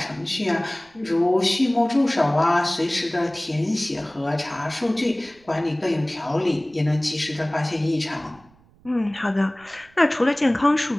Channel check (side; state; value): right; noise; rumble, 30 dB below the sound